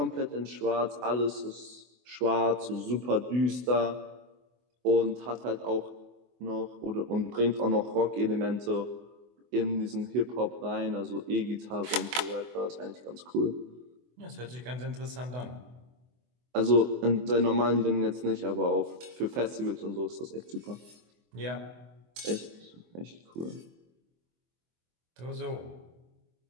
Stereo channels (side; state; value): left; late; 24 ms